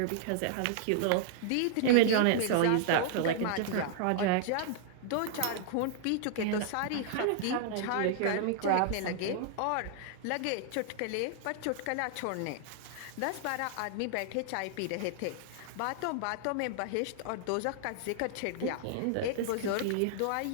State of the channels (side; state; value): both; different; correlation -0.01